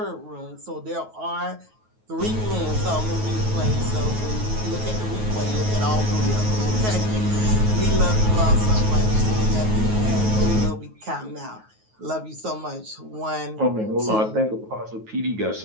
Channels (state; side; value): late; left; 9.3 ms